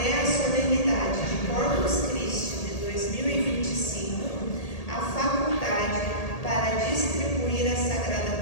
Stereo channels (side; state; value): right; late; 1.8 ms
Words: a solenidade de Corpus Christi de 2025, a faculdade para distribuir a Sagrada